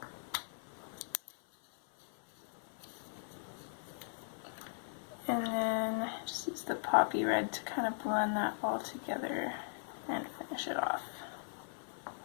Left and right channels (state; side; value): silent; right; 52 dB below the other